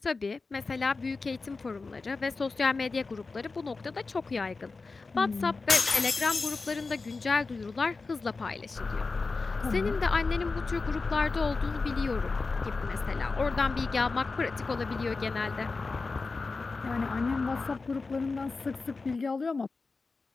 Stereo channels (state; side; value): quieter; right; 4.0 dB